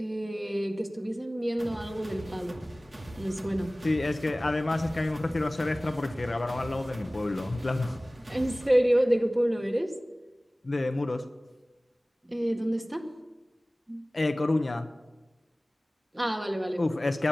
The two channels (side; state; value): both; normal; correlation 0.98